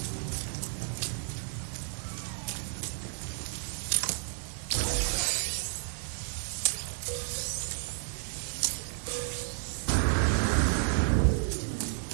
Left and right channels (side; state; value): left; silent; digital silence